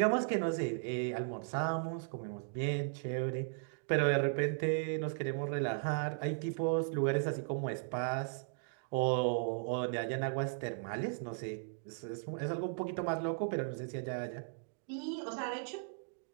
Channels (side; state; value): left; silent; digital silence